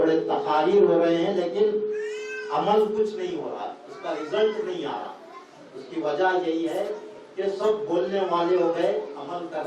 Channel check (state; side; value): identical; both; correlation 1.00